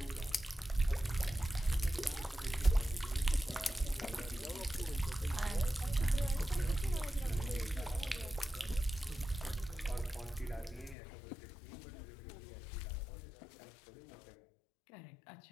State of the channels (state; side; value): drops out; right; at 11.0 s